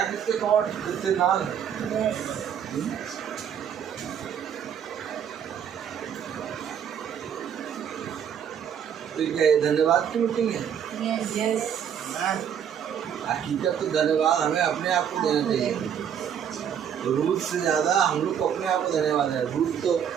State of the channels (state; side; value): quieter; left; 8.5 dB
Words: किसके कॉर्ड, किसके नाल। तो क्या धन्यवाद की मीटिंग है? हकीकत तो धन्यवाद हमें अपने आप को देना चाहिए। रूद से ज़्यादा हम लोग को अपने आप को धन्यवाद है। रूद तो